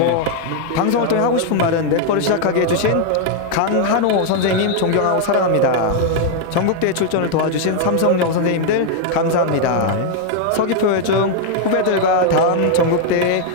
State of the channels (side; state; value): both; different; correlation 0.00